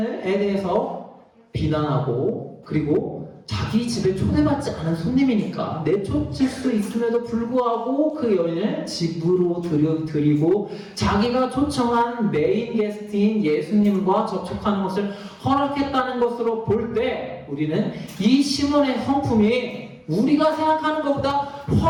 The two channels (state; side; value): identical; both; correlation 1.00